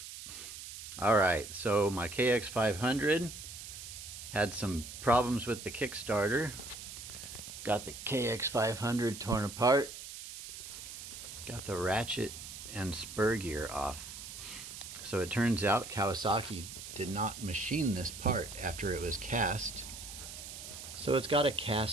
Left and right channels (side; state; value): right; noise; hiss, 11 dB below the sound